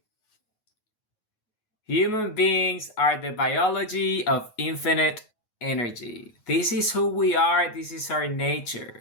Human beings are the biology of infinite energy. This is who we are, this is our nature.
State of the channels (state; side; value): late; right; 9.3 ms